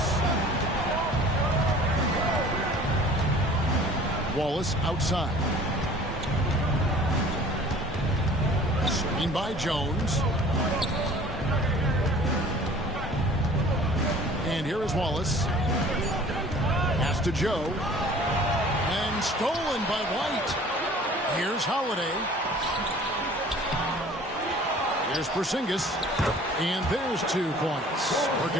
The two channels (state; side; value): normal; both; correlation 0.48